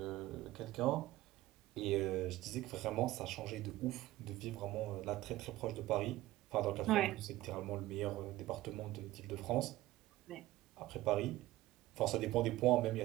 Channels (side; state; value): left; quieter; 16.7 dB